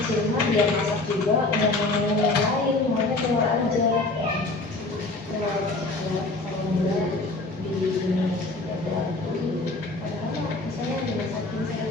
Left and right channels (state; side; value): quieter; right; 3.1 dB